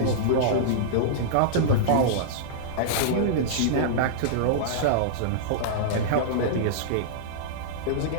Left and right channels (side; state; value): both; different; correlation -0.02